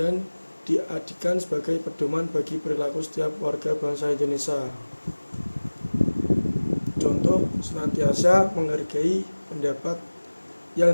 diadikan sebagai pedoman bagi perilaku setiap warga bangsa Indonesia. Contoh, senantiasa menghargai pendapat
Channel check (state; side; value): inverted; both; correlation -1.00